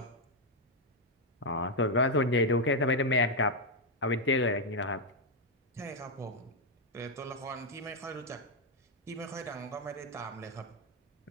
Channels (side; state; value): both; normal; correlation 0.01